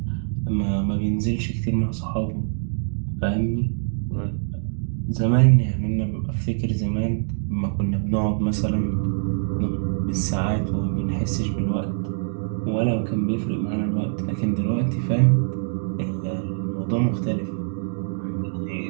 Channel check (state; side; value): silent; left; digital silence